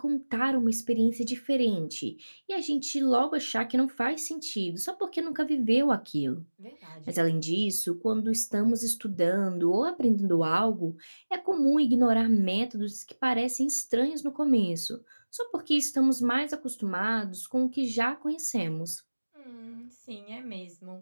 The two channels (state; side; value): inverted; both; correlation -1.00